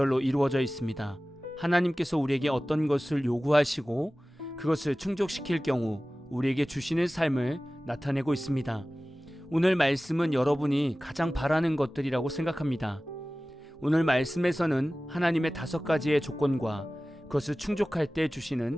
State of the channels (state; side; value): normal; both; correlation 0.97